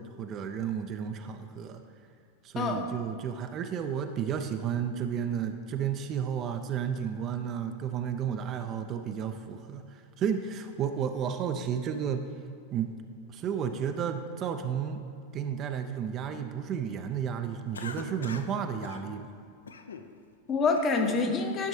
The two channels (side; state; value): left; quieter; 3.9 dB